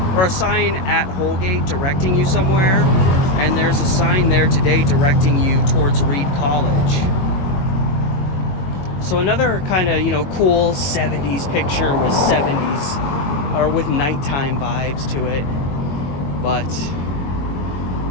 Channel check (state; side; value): late; right; 22 ms